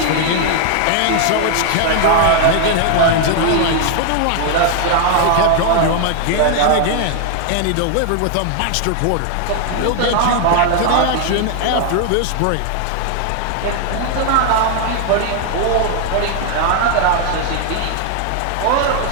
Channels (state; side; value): different; both; correlation 0.00